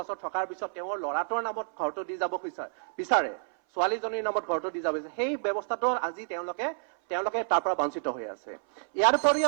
থকাৰ পিছত তেওঁৰ ল'ৰাটোৰ নামত ঘৰটো দি যাব বিচাৰে, ছোৱালীজনীৰ নামত ঘৰটো দি যাব বিচাৰে, সেই ব্যৱস্থাটো আজি তেওঁলোকে তাৰ পৰা বঞ্চিত হৈ আছে। ইয়াৰ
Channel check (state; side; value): silent; left; 58 dB below the other